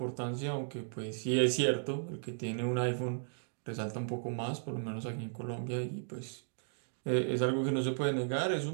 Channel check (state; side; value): silent; left; digital silence